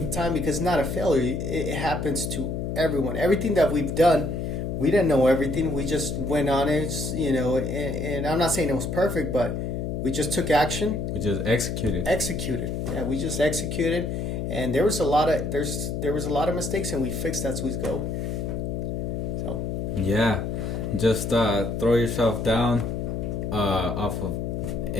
the time, because it's not a failure. It happens to everyone. Everything that we've done, we didn't know everything. We just went on it, and I'm not saying it was perfect, but we just took action. We just executed. Yeah, we just executed, and there was a lot of mistakes, and we fixed as we go. So yeah, just throw yourself down off of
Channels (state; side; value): noise; left; hum, 3 dB below the sound